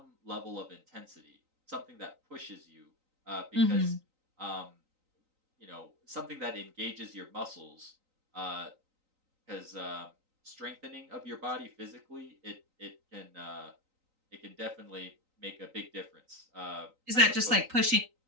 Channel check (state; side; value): late; left; 3.9 ms